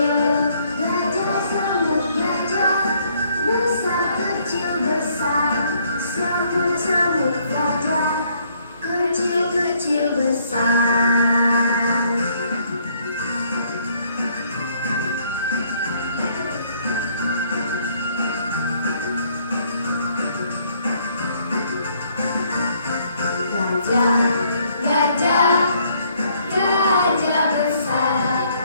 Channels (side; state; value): both; inverted; correlation -0.66